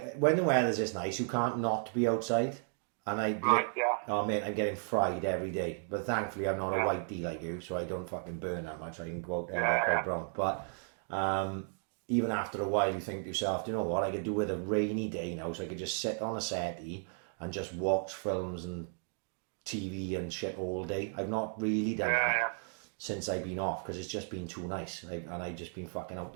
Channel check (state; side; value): silent; left; 55 dB below the other